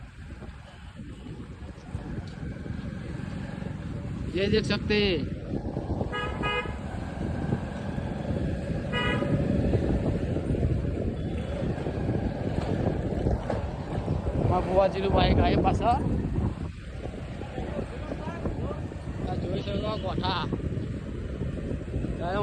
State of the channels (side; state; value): both; identical; correlation 1.00